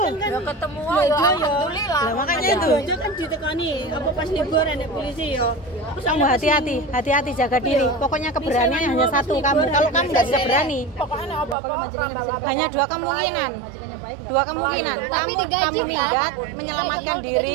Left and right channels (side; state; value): left; drops out; at 11.6 s